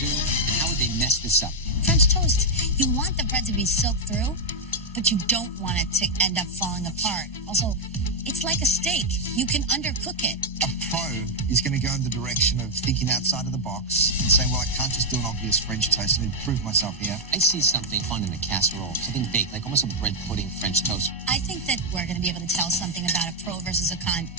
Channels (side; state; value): both; normal; correlation 0.01